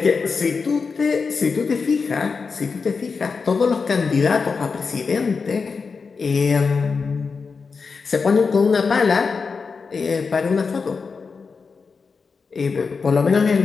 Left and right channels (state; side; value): quieter; right; 5.0 dB